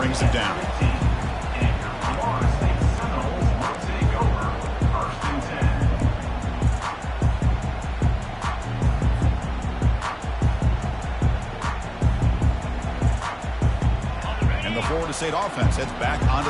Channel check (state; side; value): identical; both; correlation 1.00